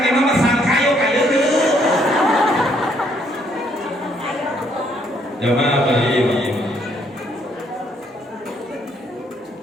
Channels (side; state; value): both; normal; correlation 0.69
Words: emang mah sangkayo ka leuheuh jamaah baik